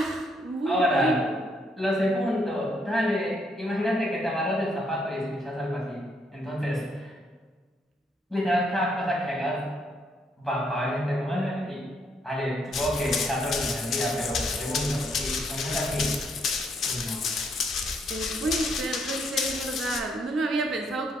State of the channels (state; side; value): normal; both; correlation 0.72